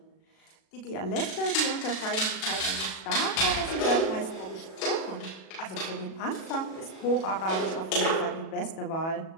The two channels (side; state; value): right; late; 37 ms